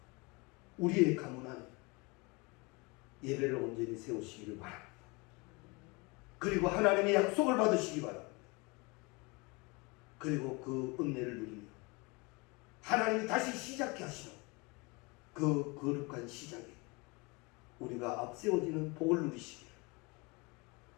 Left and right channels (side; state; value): right; quieter; 27.3 dB